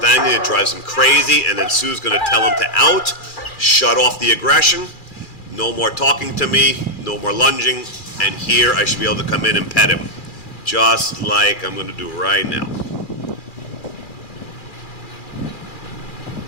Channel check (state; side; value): late; right; 2.4 ms